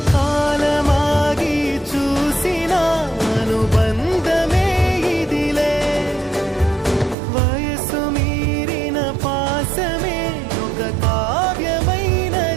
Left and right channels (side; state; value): left; drops out; at 7.2 s